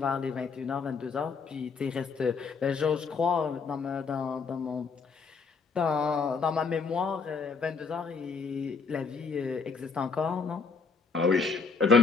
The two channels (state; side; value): quieter; right; 5.0 dB